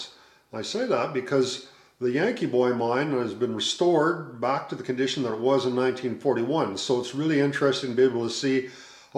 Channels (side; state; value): both; identical; correlation 1.00